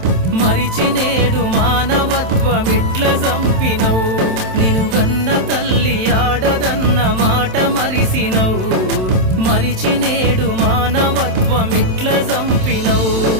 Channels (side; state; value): left; late; 27 ms